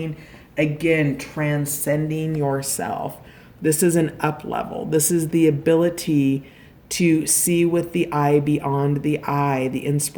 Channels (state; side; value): identical; both; correlation 1.00